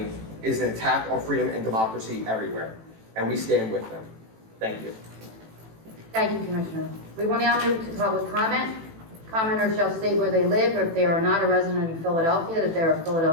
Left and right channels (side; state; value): left; late; 18 ms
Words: is an attack on freedom and democracy everywhere, and we stand with them. Thank you. Thank you, Commissioner. We will now move to public comment. Commenters shall state where they live, or if they are not a resident of Philadelphia, that they are a